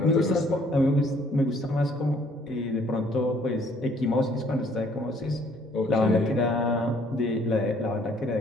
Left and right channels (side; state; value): both; normal; correlation 0.62